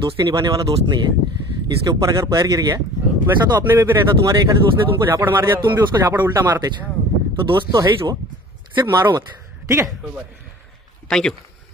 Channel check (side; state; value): both; normal; correlation 0.44